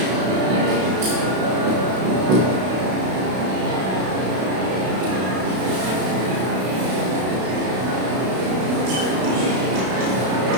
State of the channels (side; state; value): left; late; 32 ms